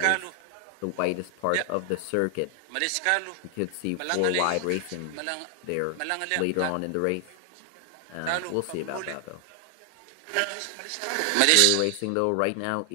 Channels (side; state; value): both; different; correlation 0.00